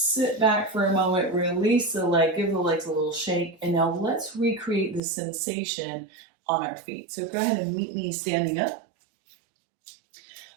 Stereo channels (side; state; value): left; drops out; at 5.0 s